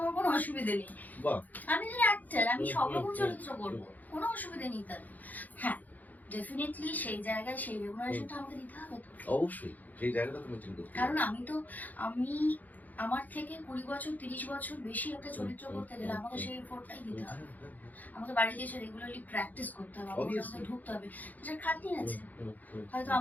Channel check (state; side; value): late; right; 0.081 ms